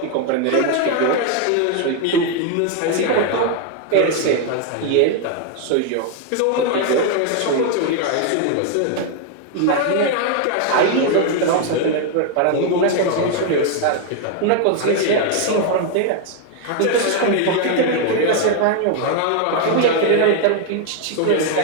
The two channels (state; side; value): different; both; correlation 0.01